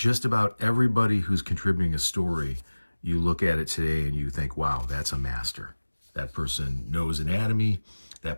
about everybody who's contributing a story, you look at it today and you think, wow, that's a master. That person knows anatomy.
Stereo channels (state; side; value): inverted; both; correlation -1.00